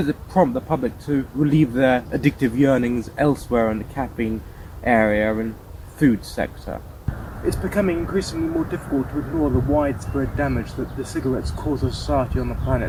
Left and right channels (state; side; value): identical; both; correlation 1.00